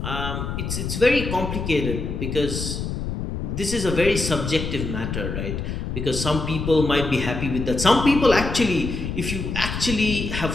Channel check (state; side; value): noise; left; rumble, 4 dB below the sound